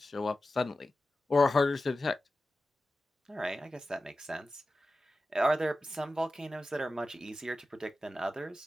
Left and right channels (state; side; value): normal; both; correlation 0.93